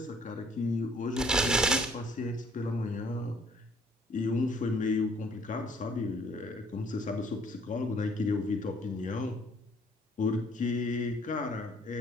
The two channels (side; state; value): both; normal; correlation 0.61